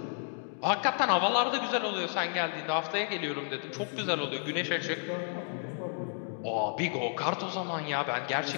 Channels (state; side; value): silent; right; 57 dB below the other